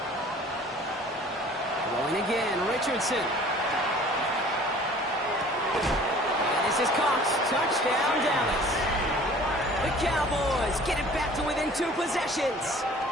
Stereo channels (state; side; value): normal; both; correlation 0.49